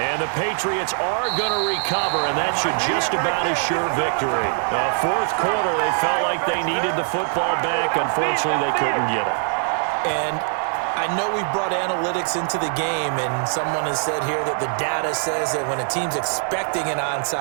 the Patriots are going to recover, and that should just about assure victory. Fourth quarter, they felt like they needed the football back. Unfortunately, they couldn't get it. And I know we brought analytics into the game, and someone has said here that the data says that when a team's expecting an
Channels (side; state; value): left; silent; 64 dB below the other